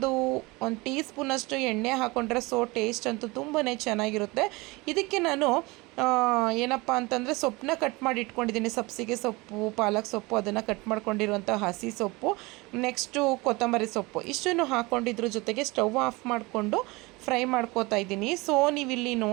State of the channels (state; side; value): quieter; left; 23.9 dB